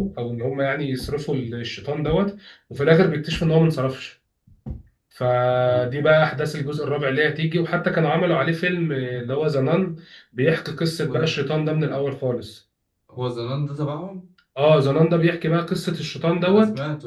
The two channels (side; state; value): both; identical; correlation 1.00